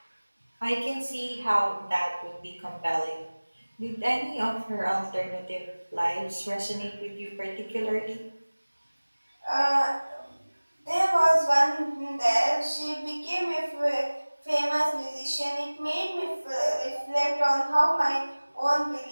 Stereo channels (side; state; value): both; inverted; correlation -1.00